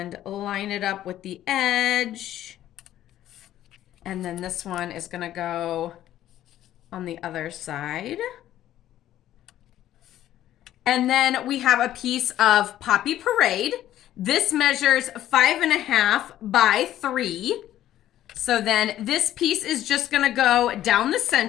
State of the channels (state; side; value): quieter; right; 12.7 dB